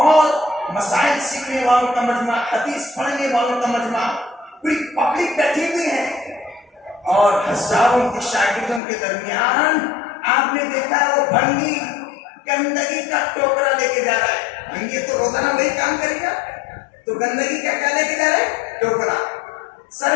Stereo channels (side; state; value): right; drops out; at 8.8 s